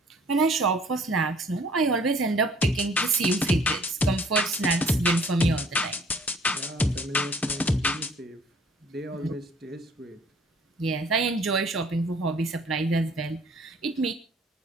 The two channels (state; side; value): normal; both; correlation 0.56